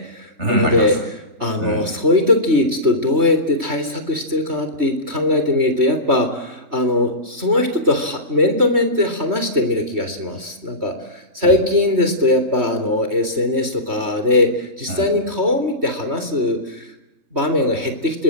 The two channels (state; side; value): late; left; 3.1 ms